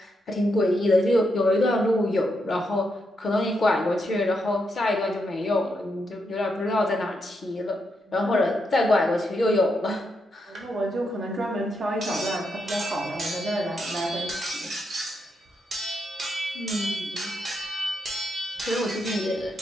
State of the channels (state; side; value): normal; both; correlation 0.82